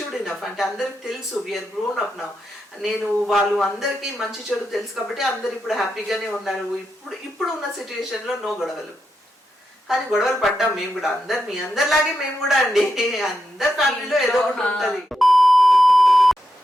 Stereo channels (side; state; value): both; normal; correlation 0.85